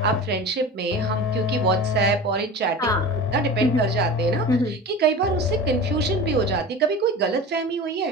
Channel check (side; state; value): both; normal; correlation 0.33